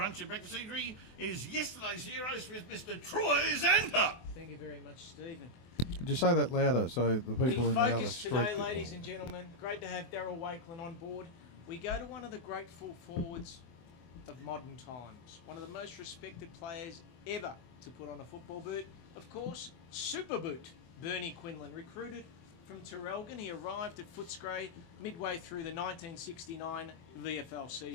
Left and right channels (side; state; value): right; late; 24 ms